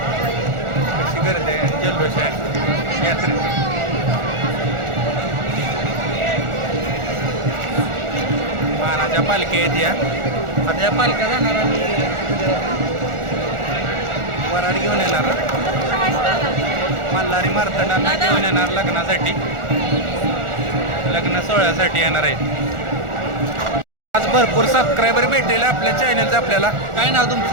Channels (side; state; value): left; late; 1.4 ms